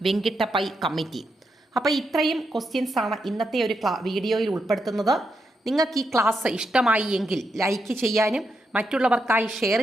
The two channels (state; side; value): normal; both; correlation 0.83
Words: Venkatappiah committee. അപ്പോൾ ഇത്രയും ക്വസ്റ്റ്യൻസ് ആണ് ഇന്നത്തെ ഒരു വീഡിയോയിൽ ഉൾപ്പെടുത്തുന്നത്. നിങ്ങൾക്ക് ഈ ക്ലാസ് ഇഷ്ടമായി എങ്കിൽ ലൈക്ക് ചെയ്യാനും മറ്റുള്ളവർക്കായി ഷെയർ